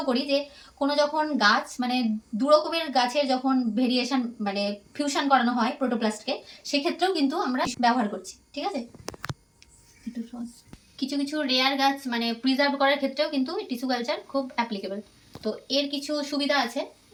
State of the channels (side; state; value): both; identical; correlation 1.00